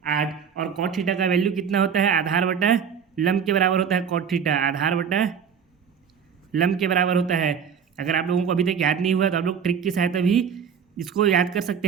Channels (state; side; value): quieter; left; 7.2 dB